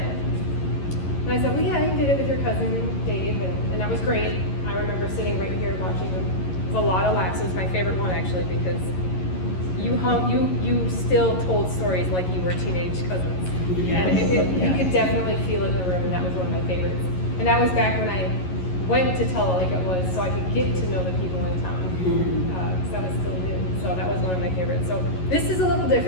And I said, "Well, yeah, you did it with your cousin Dave, and that was great. I remember sitting right here watching him. It was a lot of laughs. It was my favorite one actually because you still told stories like you were teenage cousins, and you could definitely feel it in the room, and that was one of my favorites. And that was back when I went to tell it like it was, so I could get to know the people in town, because I was still new. So that was one of my favorites. So this is a little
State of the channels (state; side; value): late; right; 11 ms